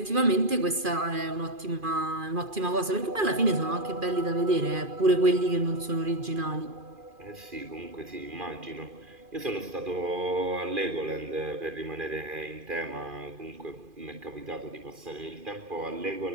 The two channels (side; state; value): left; late; 2.4 ms